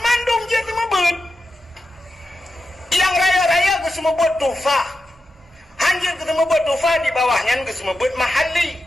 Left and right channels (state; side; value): normal; both; correlation 0.89